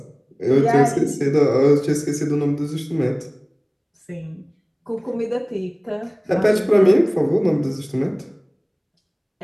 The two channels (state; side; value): identical; both; correlation 1.00